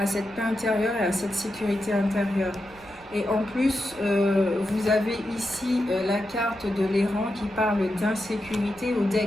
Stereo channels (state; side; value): noise; right; rumble, 25 dB below the sound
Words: cette paix intérieure et à cette sécurité intérieure. Et en plus, vous avez ici la carte de l'errant qui parle d'insécurité au